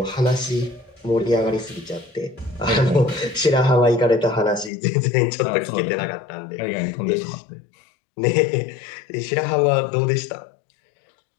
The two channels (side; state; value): right; drops out; at 4.7 s